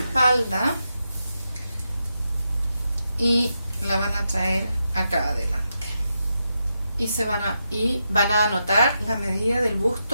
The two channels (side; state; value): both; inverted; correlation -0.86